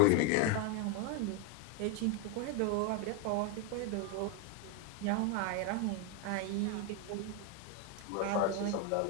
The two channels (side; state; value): both; different; correlation 0.01